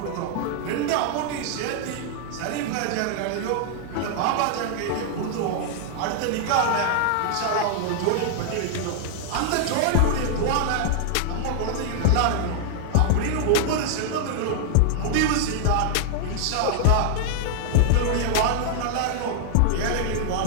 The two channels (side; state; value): both; different; correlation 0.00